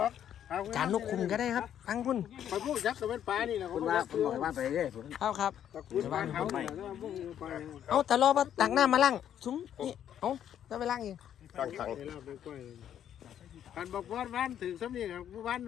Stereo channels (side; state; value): right; quieter; 10.0 dB